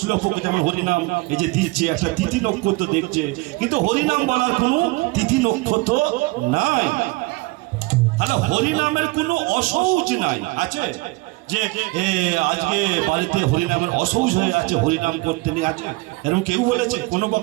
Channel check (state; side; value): quieter; left; 23.5 dB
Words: পক্ষ। যেমন হরিনাম এই যে দিচ্ছে একটা তিথি নক্ষত্র দেখছে, কিন্তু হরিনাম বলার কোনো তিথি নক্ষত্র নাই। তাহলে হরিনামের কোনো অসৌচ নাই, আছে যে আজকে বাড়িতে হরিনামের অসৌচ হয়ে আছে, হরিনাম করতে নেই, আছে এরকম কেউ বলেছে? কোনো